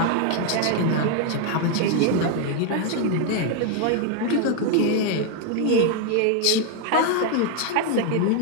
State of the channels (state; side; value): different; both; correlation 0.00